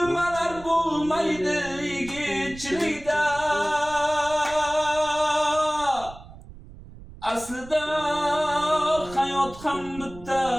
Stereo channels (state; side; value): noise; right; rumble, 17 dB below the sound